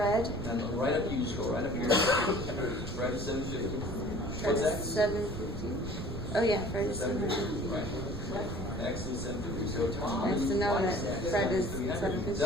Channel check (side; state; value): right; noise; rumble, 8 dB below the sound